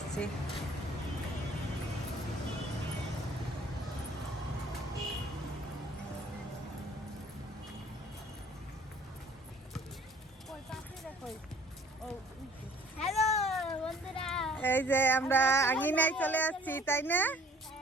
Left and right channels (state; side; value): normal; both; correlation 0.54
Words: হ্যালো বন্ধুরা, এই যে আমরা আঙিনায় চলে আসছি, তাই না?